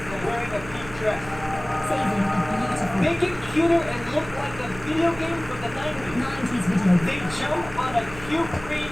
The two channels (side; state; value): right; noise; hum, 15 dB below the sound